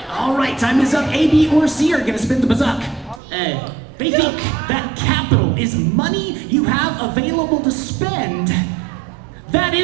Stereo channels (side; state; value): left; drops out; at 3.2 s